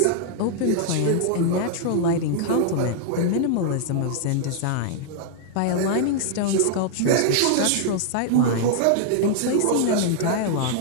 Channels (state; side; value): different; both; correlation -0.01